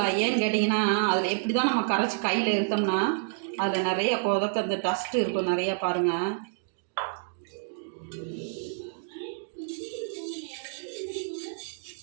ஏன்னு கேட்டிங்கன்னா, அதில் எப்படி தான் நம்ம கரைச்சி கையில் இருத்தோம்னா அதில் நிறைய கொதக்க அந்த டஸ்ட்டு இருக்கும் நிறையா. பாருங்கள்,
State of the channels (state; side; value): silent; left; digital silence